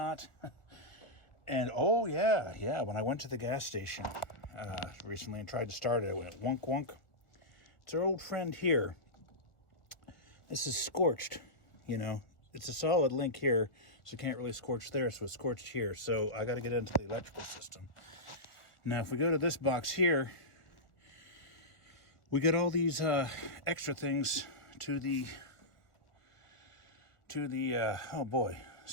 And oh yeah, when I went to the gas station recently and tried to start it, it went wonk wonk. It's our old friend here. This is scorched, you know. It's a solid link here, so you can't really scorch there, so it's scorched here. So I got to get into the electrical system. Now, if we go to this box here, we get all these extra things to the oh boy,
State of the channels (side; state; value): right; late; 1.4 ms